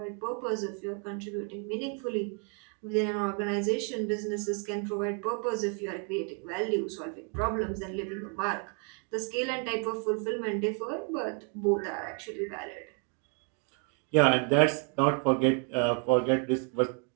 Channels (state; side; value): quieter; left; 37.8 dB